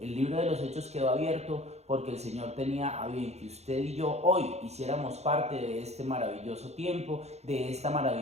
libro de los Hechos quedó abierto porque el Señor tenía a bien que usted y yo hoy hiciéramos parte de este maravilloso tiempo, de esta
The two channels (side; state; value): left; late; 0.31 ms